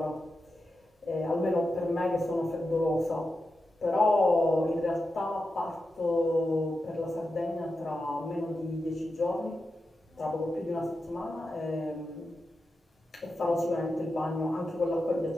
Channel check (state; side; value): normal; both; correlation 0.90